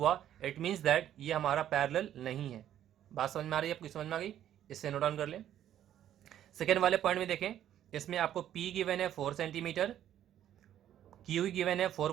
इट मीन्स दैट ये हमारा पैरेलल नहीं है। बात समझ में आ रही है आपको, समझ में आ गई, इससे नोट डाउन कर लें। सेकेंड वाले पॉइंट में देखें, इसमें आपको P गिवन है 4 सेंटीमीटर, Q गिवन है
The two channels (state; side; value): quieter; left; 11.2 dB